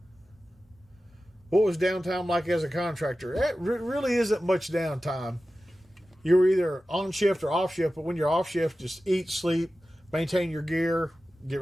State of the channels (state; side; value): normal; both; correlation 0.94